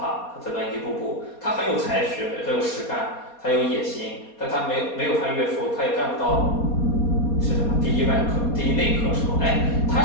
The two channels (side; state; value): right; late; 4.2 ms